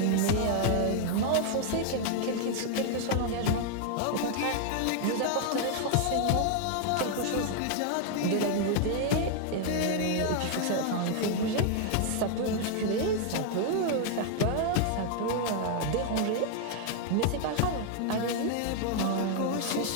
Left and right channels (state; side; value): different; both; correlation 0.00